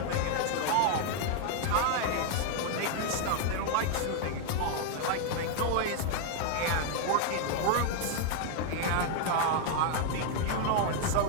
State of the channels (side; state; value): both; different; correlation 0.00